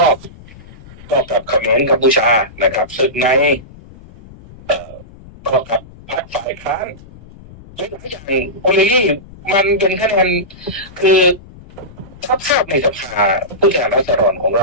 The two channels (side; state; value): left; noise; rumble, 20 dB below the sound